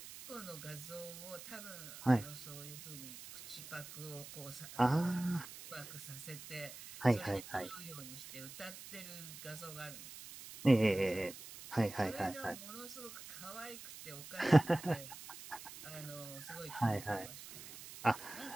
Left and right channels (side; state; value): right; noise; hiss, 13 dB below the sound